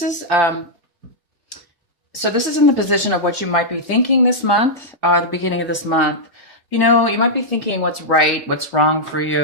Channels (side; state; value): both; normal; correlation -0.07